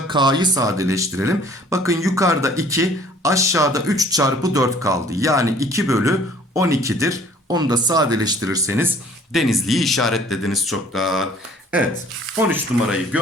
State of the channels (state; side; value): normal; both; correlation 0.54